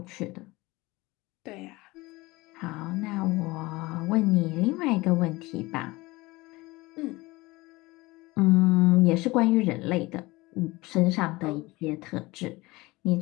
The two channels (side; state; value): right; quieter; 21.4 dB